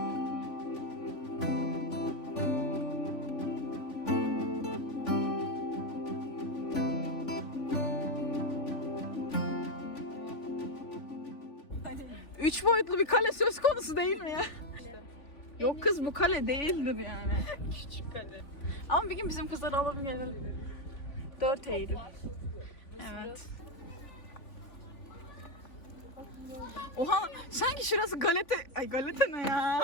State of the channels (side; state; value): right; late; 3.5 ms